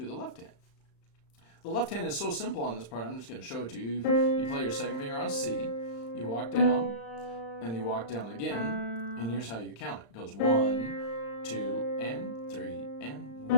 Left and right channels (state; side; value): late; right; 35 ms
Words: the left hand. The left hand is so simple on this part, I'm just going to show it to you. You play your 2nd finger on C, you walk down, and you walk down again, and here's how you count it. It goes 1, 2, and 3, and